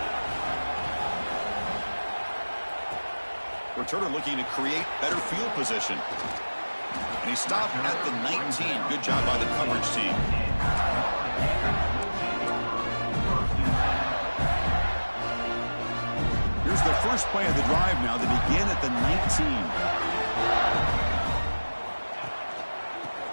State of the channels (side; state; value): both; inverted; correlation -1.00